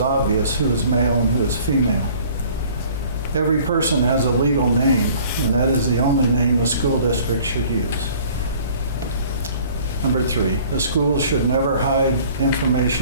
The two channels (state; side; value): inverted; both; correlation -0.52